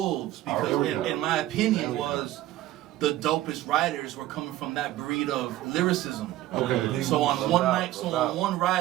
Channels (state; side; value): quieter; left; 14.9 dB